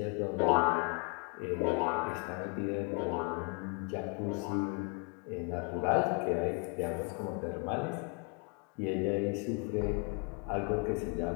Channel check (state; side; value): quieter; right; 37.6 dB